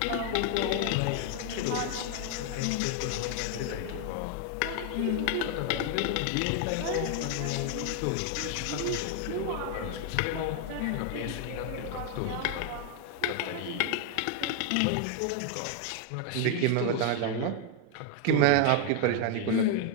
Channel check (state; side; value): different; both; correlation 0.00